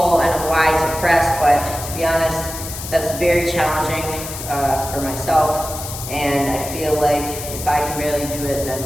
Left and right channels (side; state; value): left; noise; hiss, 9 dB below the sound